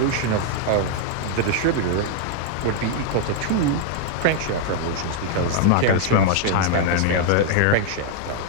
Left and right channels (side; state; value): both; different; correlation -0.01